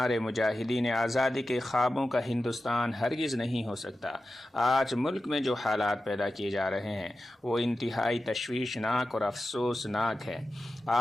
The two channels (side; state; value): both; normal; correlation 0.93